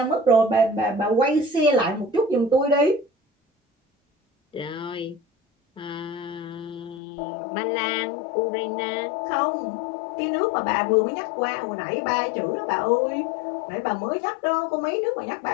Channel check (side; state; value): right; drops out; at 7.0 s